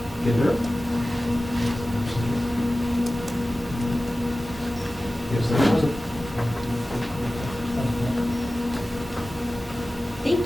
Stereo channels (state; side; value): normal; both; correlation 0.96